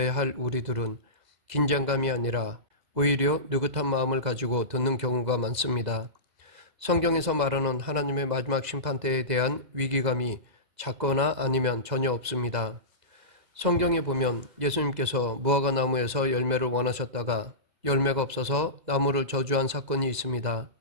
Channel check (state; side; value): late; left; 2.0 ms